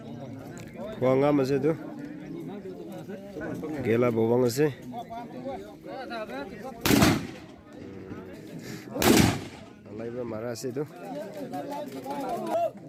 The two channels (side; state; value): both; identical; correlation 1.00